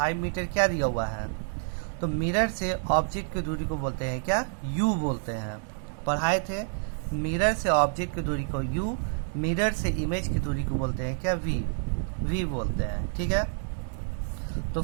मीटर क्या दिया हुआ है, तो मिरर से ऑब्जेक्ट की दूरी को बोलते हैं क्या, यू बोलते हैं। पढ़ाए थे, मिरर से ऑब्जेक्ट की दूरी को यू, मिरर से इमेज की दूरी को बोलते हैं क्या, वी बोलते हैं, ठीक है। तो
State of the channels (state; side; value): silent; left; 59 dB below the other